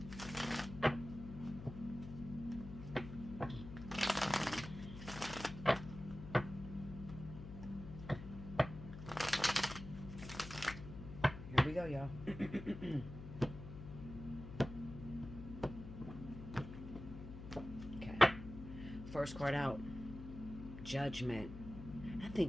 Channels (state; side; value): noise; left; hum, 10 dB below the sound